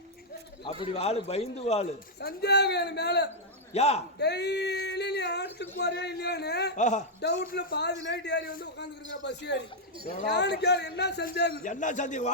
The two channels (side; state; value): both; normal; correlation -0.05